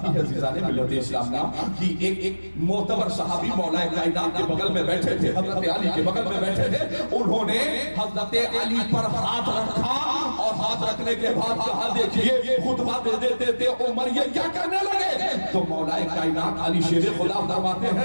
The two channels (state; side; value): inverted; both; correlation -1.00